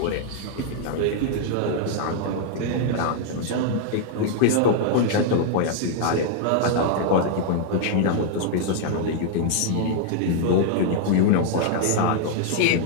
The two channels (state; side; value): different; both; correlation -0.01